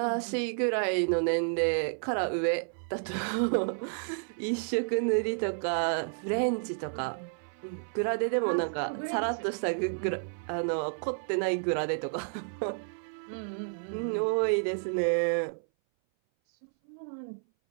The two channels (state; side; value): silent; left; 57 dB below the other